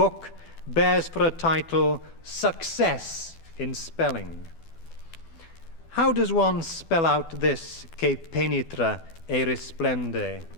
bears for a title, Success in Spelling. How does one spell out this che penetra e risplende,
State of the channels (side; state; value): right; late; 12 ms